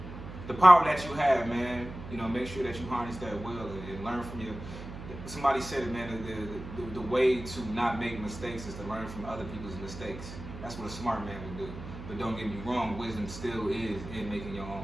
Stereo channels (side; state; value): right; noise; hum, 11 dB below the sound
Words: The power that you have, man, you know, make sure that you harness that well and learn from your. Somebody said it, man. The way to not make mistakes is to learn from other people's mistakes. That's what a smart man would do. But don't get me wrong, wisdom still is in making your